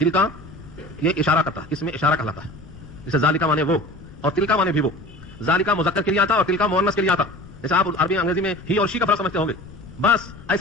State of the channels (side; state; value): left; noise; rumble, 18 dB below the sound